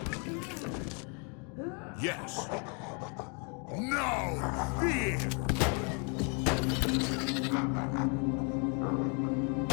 Yes. No fear.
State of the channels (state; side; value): quieter; right; 36.5 dB